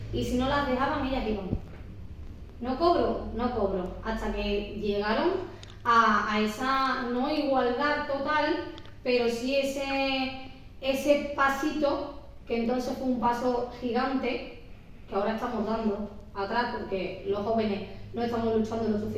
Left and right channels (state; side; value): identical; both; correlation 1.00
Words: Y si no las dejaban, ellas iban. No cobro. Hasta que llegaron a esa no igualdad total, pero sí ese pasito, que entonces fue un paso gigante, que ahora estamos dando atrás porque los jóvenes no estamos luchando lo